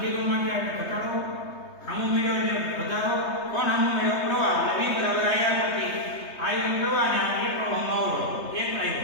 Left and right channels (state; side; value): late; right; 3.3 ms